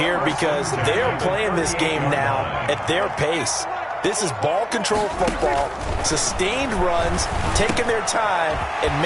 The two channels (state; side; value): identical; both; correlation 1.00